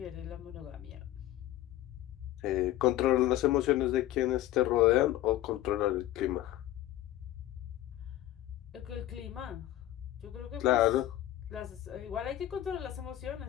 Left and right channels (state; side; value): quieter; right; 14.1 dB